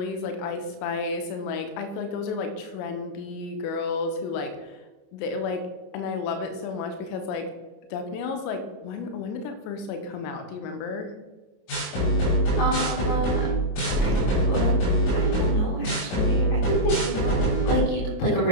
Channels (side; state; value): right; late; 28 ms